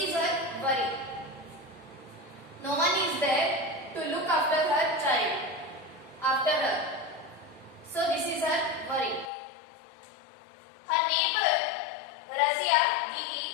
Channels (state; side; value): drops out; right; at 9.3 s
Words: her worry. No one is there to look after her child, after her. So this is her worry. Her neighbor